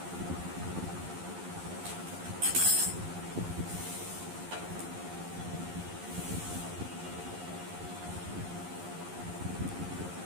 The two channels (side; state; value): left; late; 11 ms